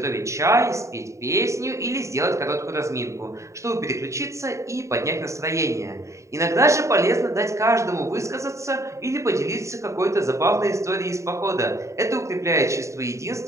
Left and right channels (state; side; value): late; left; 0.14 ms